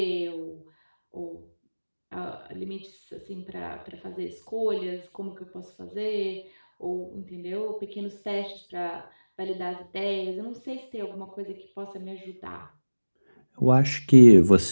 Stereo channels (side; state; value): both; inverted; correlation -1.00